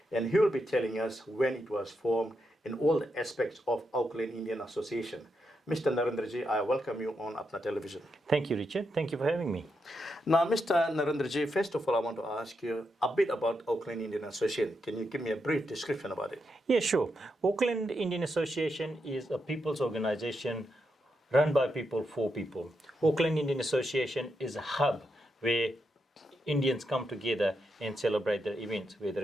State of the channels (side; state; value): both; normal; correlation 0.84